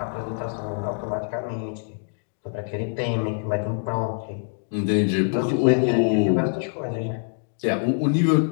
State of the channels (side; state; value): right; silent; digital silence